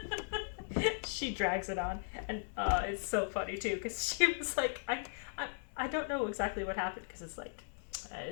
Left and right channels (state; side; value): silent; right; digital silence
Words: She drags it on, and it's so funny too, because she was like, I don't know exactly what happened, because